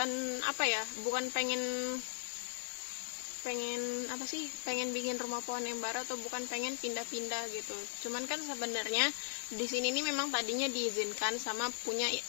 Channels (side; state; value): right; silent; digital silence